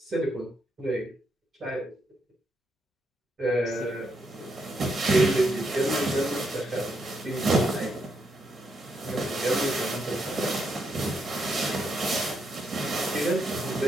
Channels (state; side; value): normal; both; correlation 0.79